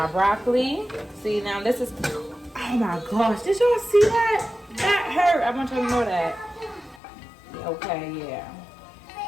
broccoli. See, now this is, oh my gosh, did y'all see that? That hurt. I want y'all to know that. Okay, yeah.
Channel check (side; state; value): right; drops out; at 7.0 s